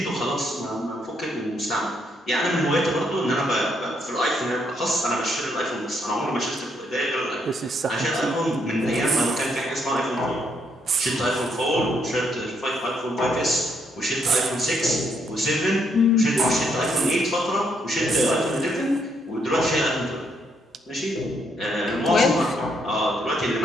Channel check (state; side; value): normal; both; correlation 0.74